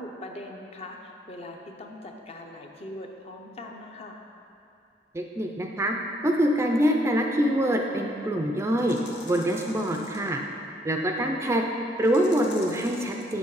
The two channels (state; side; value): normal; both; correlation 0.69